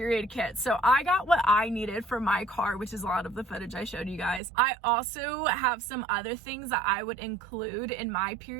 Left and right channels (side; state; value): left; drops out; at 4.4 s